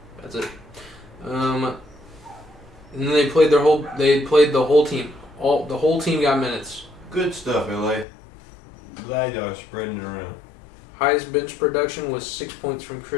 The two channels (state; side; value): drops out; right; at 8.1 s